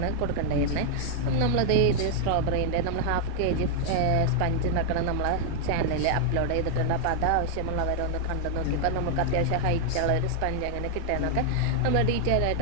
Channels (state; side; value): different; both; correlation 0.00